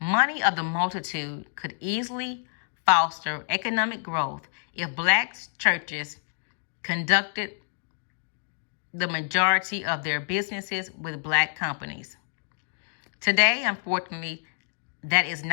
of the multitude could easily foster economic growth if Black churches conducted the majority of their businesses with Black companies. Today, unfortunately, that is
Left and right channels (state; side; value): silent; right; digital silence